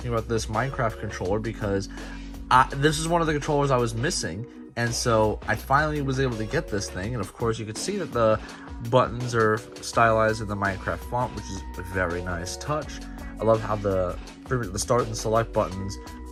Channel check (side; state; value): both; identical; correlation 1.00